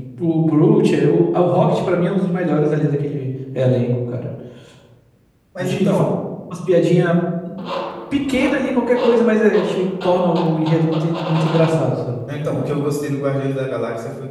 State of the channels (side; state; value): both; identical; correlation 1.00